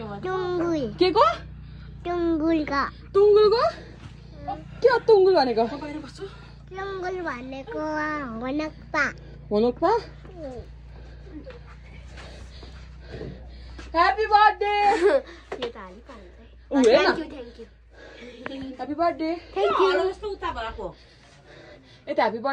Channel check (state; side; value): identical; both; correlation 1.00